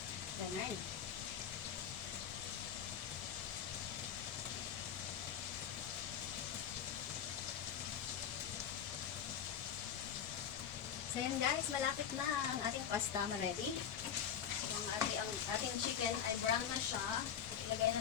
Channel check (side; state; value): right; quieter; 8.5 dB